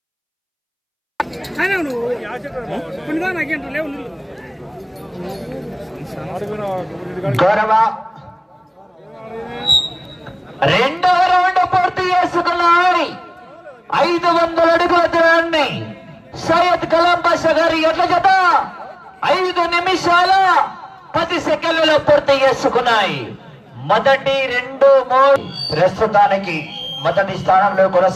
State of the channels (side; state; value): both; identical; correlation 1.00